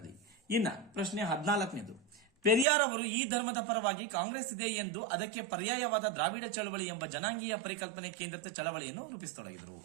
ಇನ್ನ ಪ್ರಶ್ನೆ 14. ಪೆರಿಯಾರ್ ಅವರು ಈ ಧರ್ಮದ ಪರವಾಗಿ ಕಾಂಗ್ರೆಸ್ ಇದೆ ಎಂದು ಅದಕ್ಕೆ ಪರ್ಯಾಯವಾದ ದ್ರಾವಿಡ ಚಳವಳಿ ಎಂಬ ಜನಾಂಗೀಯ ಪರಿಕಲ್ಪನೆ ಕೇಂದ್ರಿತ ಚಳವಳಿಯನ್ನು ರೂಪಿಸತೊಡಗಿದರು.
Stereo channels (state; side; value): drops out; left; at 2.7 s